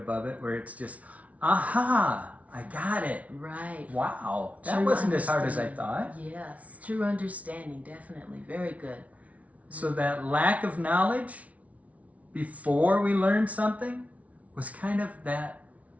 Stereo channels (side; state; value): left; late; 0.067 ms